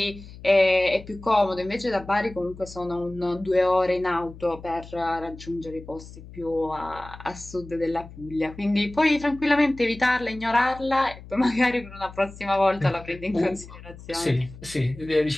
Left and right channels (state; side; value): noise; left; hum, 17 dB below the sound